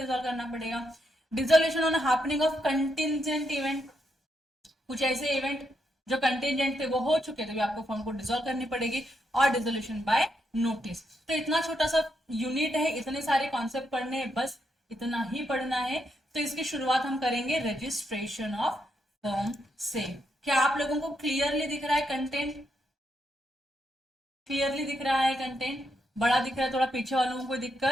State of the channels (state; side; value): normal; both; correlation 0.80